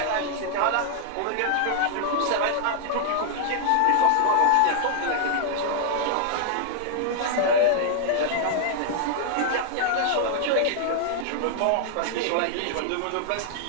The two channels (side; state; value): both; different; correlation 0.00